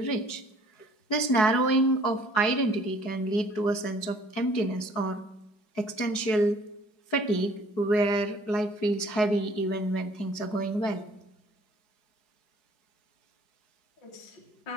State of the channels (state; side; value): late; right; 4.7 ms